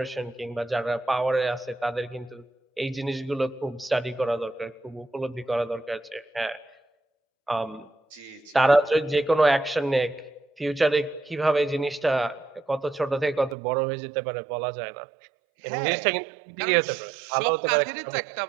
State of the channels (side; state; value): left; drops out; at 13.6 s